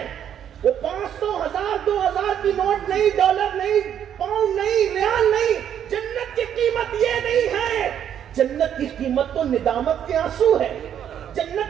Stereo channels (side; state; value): left; quieter; 9.5 dB